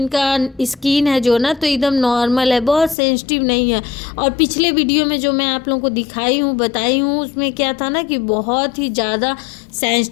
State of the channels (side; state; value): right; drops out; at 3.0 s